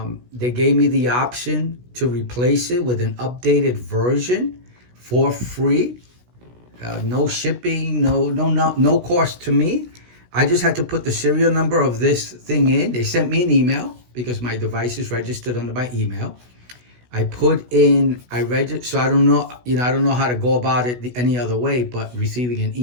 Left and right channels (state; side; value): late; left; 16 ms